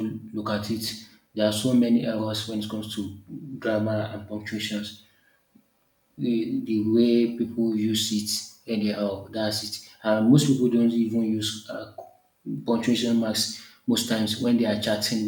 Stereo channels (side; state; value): both; identical; correlation 1.00